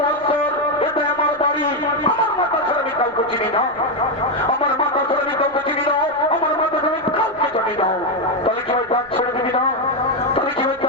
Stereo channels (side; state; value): left; noise; rumble, 30 dB below the sound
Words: এটা আমার বাড়ি, আমার মাতা ছাড়া আমি কাউকে চিনি না, আমার মাতা ছাড়া আমি কাউকে চিনি না, আমার মাতা ছাড়া আমি কাউকে জানি না। তাহলে কি হয় দাঁত ছেড়ে দিবি না? তাহলে কি হয়